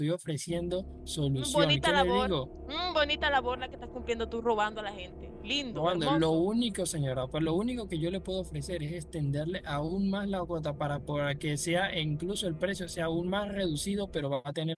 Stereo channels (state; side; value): identical; both; correlation 1.00